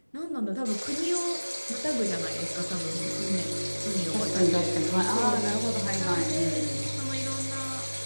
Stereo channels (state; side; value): inverted; both; correlation -1.00